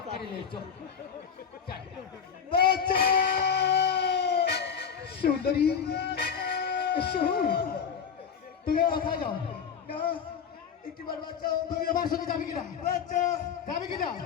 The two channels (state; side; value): quieter; right; 7.1 dB